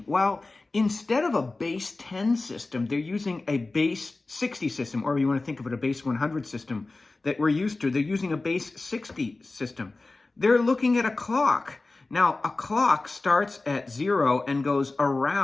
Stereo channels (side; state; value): right; quieter; 3.3 dB